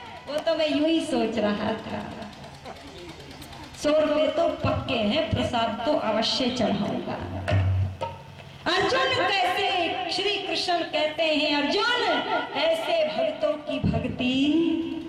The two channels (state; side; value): identical; both; correlation 1.00